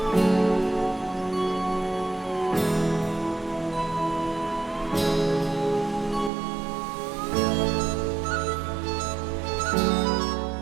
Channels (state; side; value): drops out; left; at 6.3 s